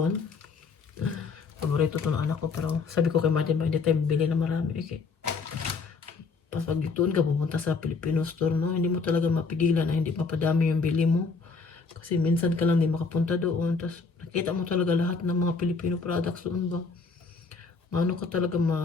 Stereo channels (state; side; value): quieter; right; 4.5 dB